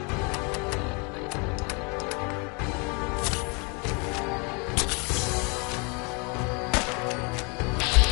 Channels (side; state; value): right; quieter; 32.1 dB